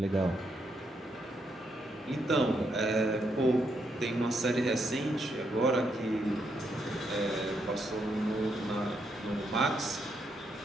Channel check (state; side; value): normal; both; correlation 0.78